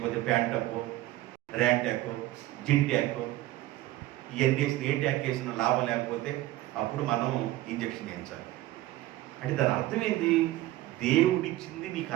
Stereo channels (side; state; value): left; quieter; 16.3 dB